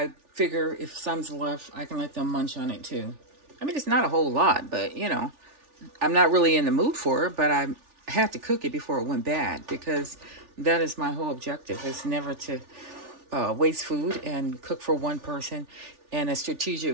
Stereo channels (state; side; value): late; left; 3.4 ms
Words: figure if some's left, I can let them munch on it too. I mean, it's not a whole lot, but I'm not really in the mood for it, but I had to cook it before it went bad because that is my whole objective. Is never to waste food and cook for one person in a